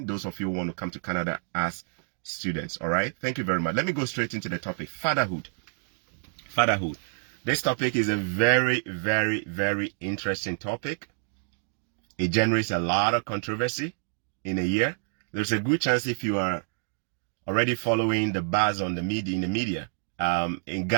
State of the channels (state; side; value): silent; left; digital silence